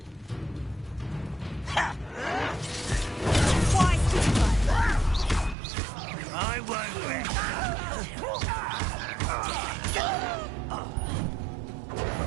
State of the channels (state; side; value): drops out; left; at 5.6 s